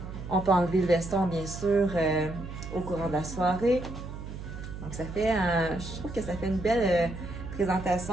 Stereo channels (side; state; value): right; noise; hum, 10 dB below the sound